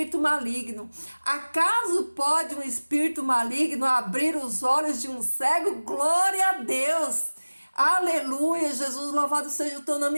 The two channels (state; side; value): inverted; both; correlation -1.00